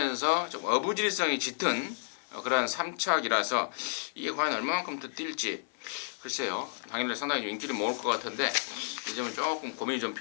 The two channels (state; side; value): silent; right; 57 dB below the other